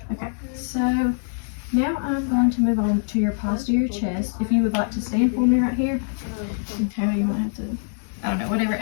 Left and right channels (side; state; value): right; silent; digital silence